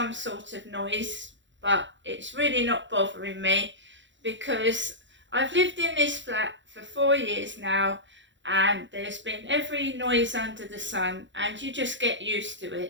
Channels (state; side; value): late; left; 0.54 ms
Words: sort of noise, but it's really not bothering me because I've lived in this flat for 4 years now and there's been every noise under the sun and you just get used to